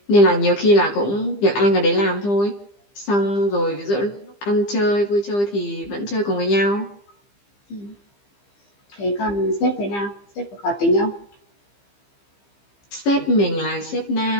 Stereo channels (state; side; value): late; right; 15 ms